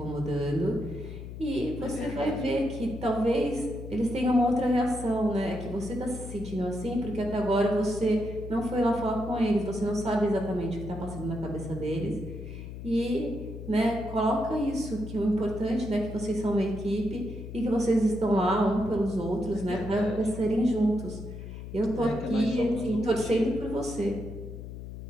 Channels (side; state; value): left; noise; hum, 10 dB below the sound